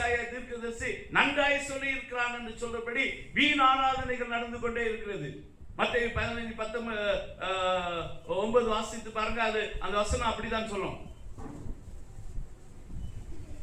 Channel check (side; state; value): both; identical; correlation 1.00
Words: தீர்க்கதரிசி நன்றாய் சொல்லி இருக்கிறான் என்று சொல்றபடி வீண் ஆராதனைகள் நடந்து கொண்டே இருக்கிறது. மத்தேயு 15:19 வாசித்து பாருங்க. அது அந்த வசனம் அப்படிதான் சொல்லும்.